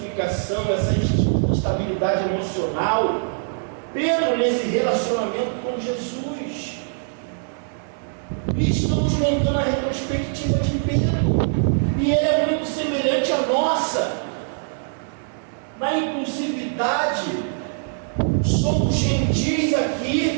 essa instabilidade emocional. Pedro, nesse relacionamento com Jesus. E estamos montando a retrospectiva de Pedro, e ele é muito semelhante à nossa, na impulsividade. Somos gentis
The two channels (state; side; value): silent; left; digital silence